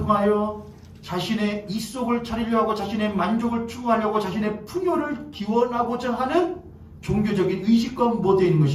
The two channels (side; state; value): both; identical; correlation 1.00